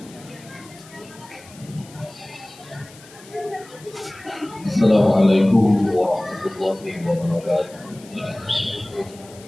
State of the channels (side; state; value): left; noise; hiss, 22 dB below the sound